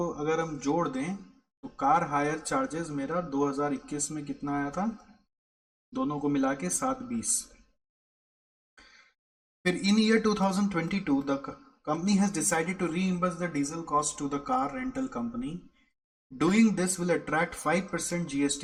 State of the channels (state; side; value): identical; both; correlation 1.00